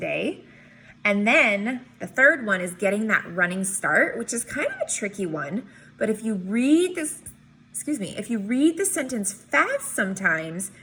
And then the third one is getting that running start, which is kind of a tricky one. But if you read this, if you read the sentence fast sometimes,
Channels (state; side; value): identical; both; correlation 1.00